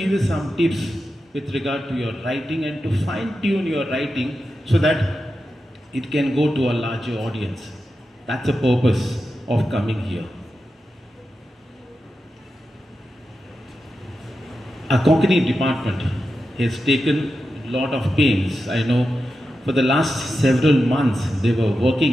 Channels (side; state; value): both; normal; correlation 0.90